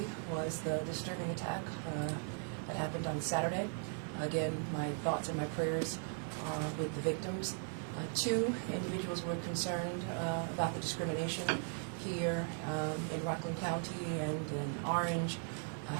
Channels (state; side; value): silent; left; 52 dB below the other